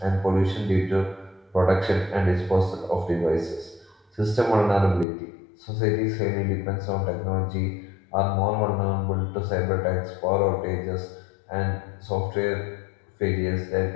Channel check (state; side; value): drops out; right; at 5.1 s